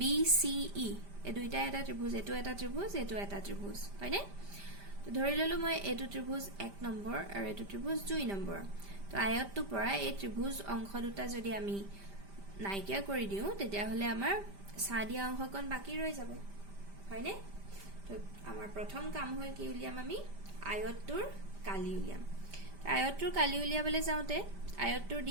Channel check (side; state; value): left; late; 5.1 ms